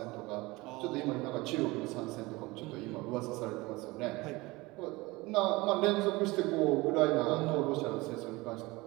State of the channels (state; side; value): quieter; left; 22.2 dB